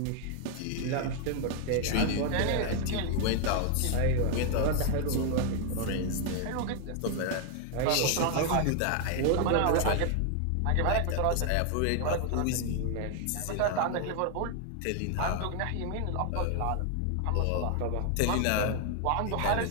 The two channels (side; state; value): both; different; correlation 0.00